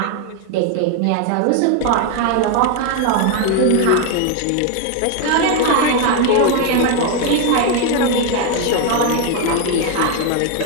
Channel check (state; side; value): different; both; correlation 0.01